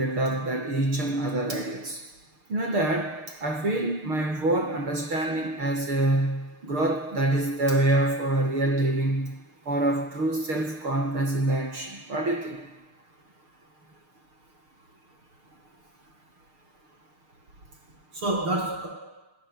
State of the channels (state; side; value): late; left; 6.6 ms